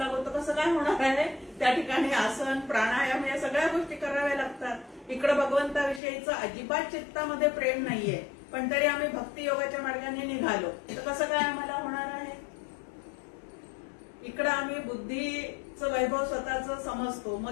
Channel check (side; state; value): right; drops out; at 6.0 s